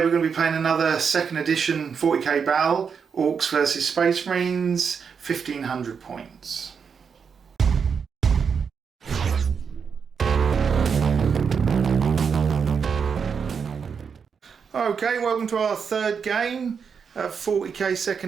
we're going to be playing another second edition 40k battle, Orks versus Space Marines, 1500 points. Okay, welcome to our third game, 40k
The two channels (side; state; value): left; quieter; 6.3 dB